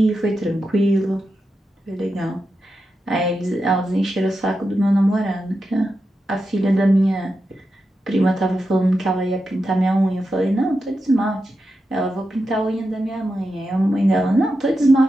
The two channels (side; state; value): both; normal; correlation 0.89